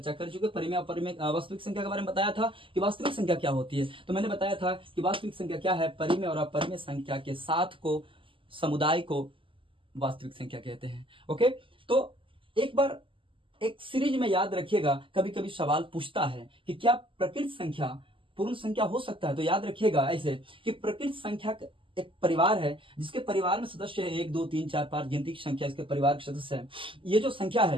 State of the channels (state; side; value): late; left; 0.25 ms